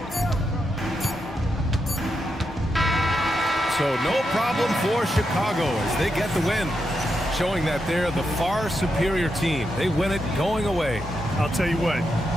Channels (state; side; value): normal; both; correlation 0.84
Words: So no problem for Chicago as they get the win, showing that they're the far superior team. They win it going away. I'll tell you what,